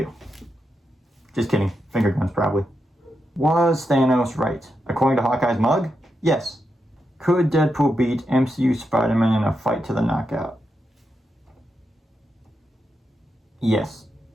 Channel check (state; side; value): normal; both; correlation 0.85